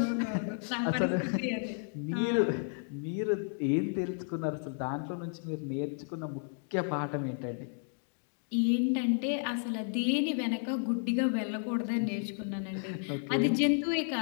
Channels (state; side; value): silent; right; 56 dB below the other